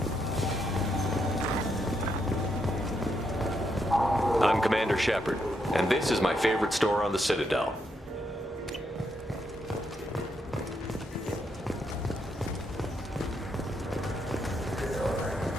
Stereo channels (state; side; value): normal; both; correlation 0.79